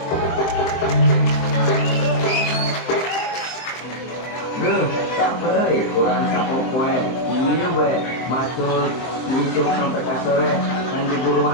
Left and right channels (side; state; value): right; late; 23 ms